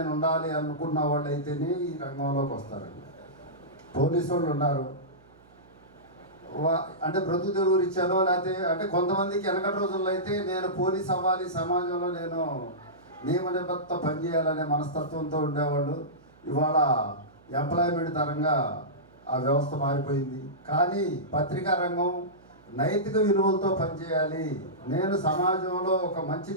ఉండాలి అనుకున్న వాళ్ళు అయితేనే ఈ రంగంలోకి వస్తారండి. పోలీసు వాళ్ళు ఉన్నారు, అంటే బ్రతుకు తెరువు ఇచ్చారో, లేకపోతే అంటే కొంతమందికి వెనకటి రోజుల్లో అయితే నేను పోలీస్ అవ్వాలి, సమాజంలో నేను నియమ నిబద్ధత పనిచేయాలనే మనస్తత్వంతో ఉండేవాళ్ళు. ఇవాళ ఎంప్లాయ్మెంట్ తరంగా ఆ వ్యవస్థ మారిపోయింది. కానీ పత్రికా రంగం నైతిక విలువలతో పనిచేయాలి, నేను సమాజంలో ఒక మంచి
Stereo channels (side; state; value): right; noise; hum, 28 dB below the sound